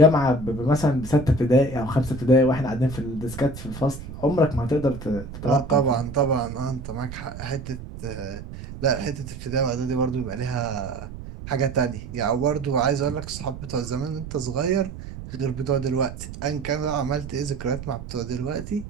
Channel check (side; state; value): right; noise; rumble, 11 dB below the sound